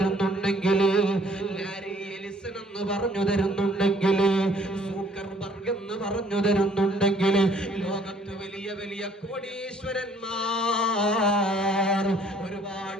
ലാരി എലിസൺ എന്ന് പറഞ്ഞു തരുന്നുണ്ടെങ്കിൽ, സൂക്കർബർഗ് എന്ന് പറഞ്ഞു തരുന്നുണ്ടെങ്കിൽ, ലോകത്ത് വലിയ വലിയ കോടീശ്വരന്മാർ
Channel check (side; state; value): both; normal; correlation 0.60